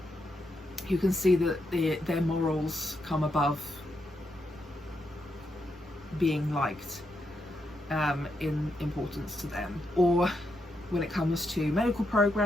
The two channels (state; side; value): normal; both; correlation 0.82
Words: you can see that their morals come above being liked in importance to them. Or when it comes to medical